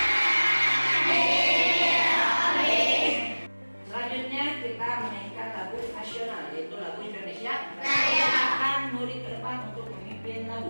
Selanjutnya kita menyanyikan lagu nasional, yaitu lagu Indonesia Raya. Akan murid ke depan untuk memimpin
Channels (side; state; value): both; inverted; correlation -1.00